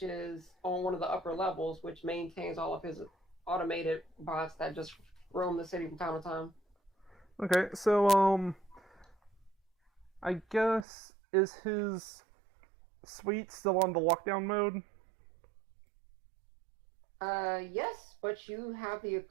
is on one of the upper levels, which maintains all of his automated bots that just roam the city from time to time. Okay, so I guess is his suite still on the lockdown mode? Yes, but you have the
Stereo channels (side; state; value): left; drops out; at 10.9 s